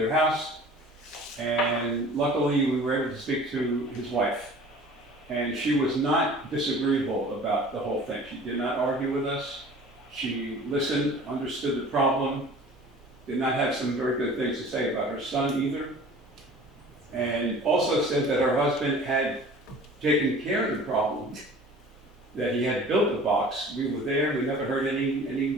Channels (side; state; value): both; normal; correlation 0.44